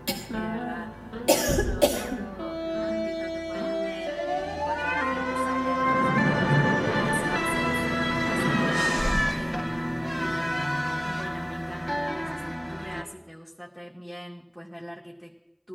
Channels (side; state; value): both; identical; correlation 1.00